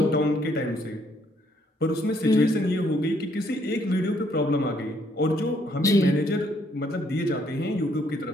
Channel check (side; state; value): both; normal; correlation 0.69